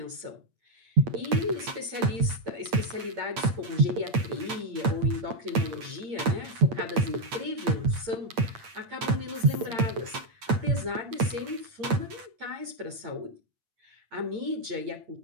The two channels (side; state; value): left; late; 8.7 ms